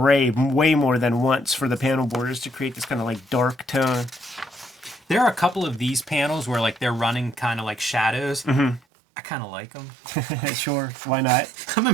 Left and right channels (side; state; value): left; drops out; at 8.8 s